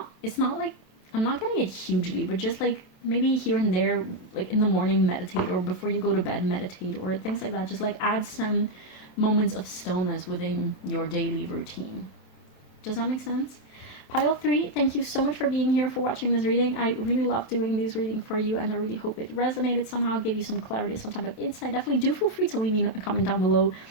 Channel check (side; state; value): right; late; 27 ms